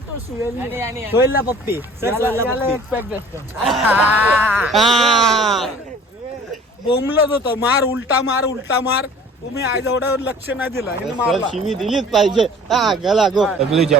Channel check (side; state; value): both; normal; correlation 0.48